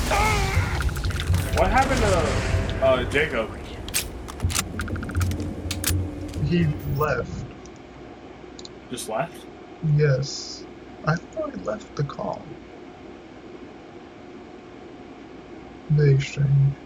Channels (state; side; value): identical; both; correlation 1.00